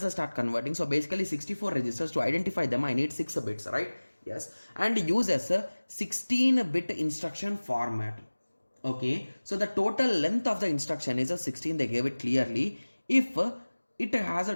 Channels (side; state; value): both; inverted; correlation -1.00